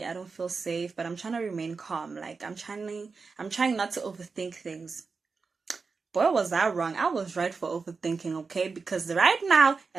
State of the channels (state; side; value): quieter; left; 4.7 dB